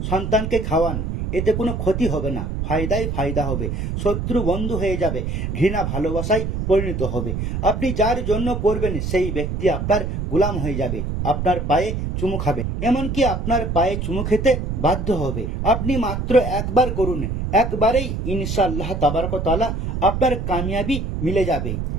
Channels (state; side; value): noise; right; rumble, 3 dB below the sound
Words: সন্তানকে খাওয়ান, এতে কোনো ক্ষতি হবে না, ফায়দাই ফায়দা হবে। শত্রু বন্ধু হয়ে যাবে, ঘৃণা ভালোবাসায় পরিণত হবে। আপনি যার জন্য পড়বেন সেই ব্যক্তি আপনার গোলাম হয়ে যাবে, আপনার পায়ে চুমু খাবে, এমনকি আপনার পায়ে চুমু খেতে বাধ্য হবে। আপনি মাত্র একবার করুন, একবারেই ইনশাআল্লাহ তাবারক ওয়া তাআলা আপনার কামিয়াবি মিলে যাবে।